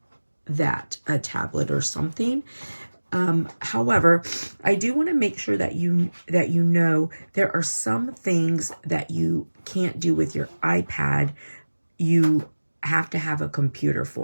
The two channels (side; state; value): both; inverted; correlation -1.00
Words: that, a tablet or something. However, I do want to make sure that you know there are some things that you can't do with your iPad. You have to have a computer